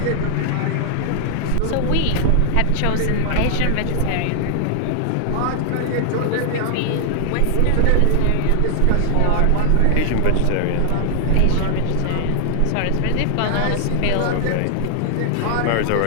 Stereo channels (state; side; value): different; both; correlation -0.01